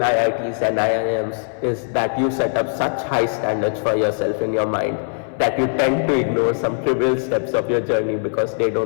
and IIMs is that you set up such high standards for yourself in your mind that you tend to ignore some trivial steps of your journey because they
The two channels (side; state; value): right; silent; 61 dB below the other